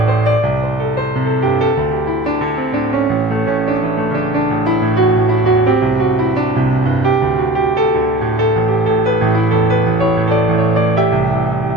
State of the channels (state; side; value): normal; both; correlation 0.39